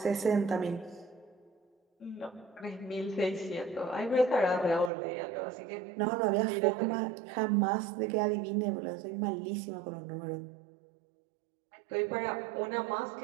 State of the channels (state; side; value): drops out; left; at 4.9 s